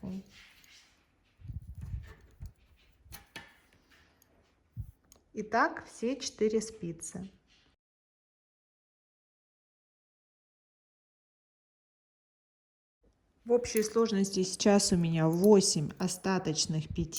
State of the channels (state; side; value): identical; both; correlation 1.00